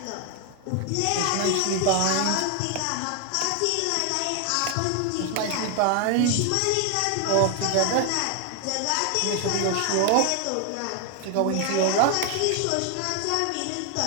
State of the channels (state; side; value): different; both; correlation 0.00